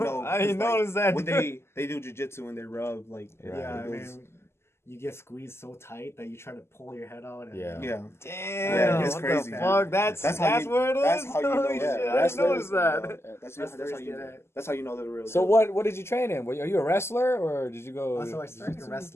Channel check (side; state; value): right; late; 0.12 ms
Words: I didn't It's like, notice that. when they do jiu-jitsu and they rub, like, Yeah, I those- mean, you get squeezed so tight that you try to pull your head out. And, Yeah. yeah. Damn, it's what crazy, the dude. fuck? That's how you- where it is? that's how you know. Holy Yeah, shit, I didn't notice that. That's Wrestlers how you get know. it. That's how you know they're the real. So deal. what did you train in? Are you a wrestler or did you go? So I started in